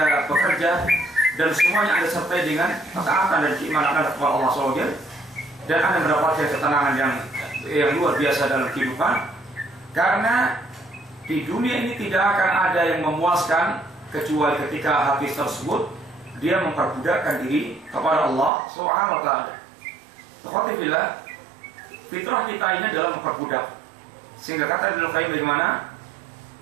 bekerja, dan semuanya Anda sertai dengan ketaatan dan keimanan Anda kepada Allah SWT, dan Anda mendapatkan ketenangan yang luar biasa dalam kehidupan. Karena di dunia ini tidak akan ada yang memuaskan kecuali ketika hati tersebut dia memperbudakkan diri kepada Allah Subhanahu wa ta'ala. Alhamdulillah, fitrah kita ini adalah memperbudak. Sehingga kata Ibnu Qayyim bagaimana?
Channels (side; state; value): left; drops out; at 18.5 s